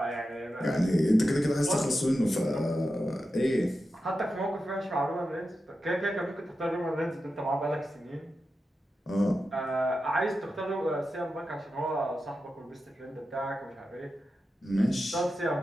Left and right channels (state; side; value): normal; both; correlation 0.91